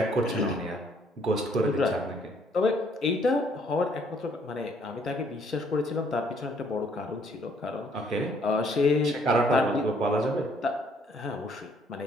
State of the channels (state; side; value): normal; both; correlation 0.64